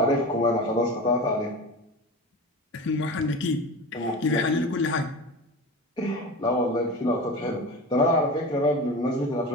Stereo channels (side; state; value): both; normal; correlation 0.30